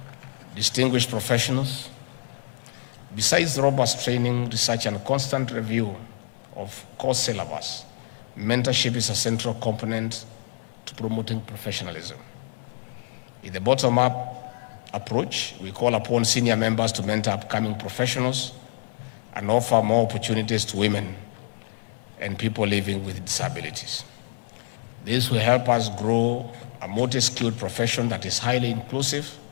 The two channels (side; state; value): right; silent; digital silence